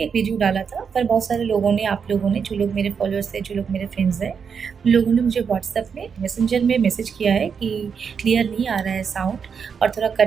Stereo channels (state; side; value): quieter; left; 6.4 dB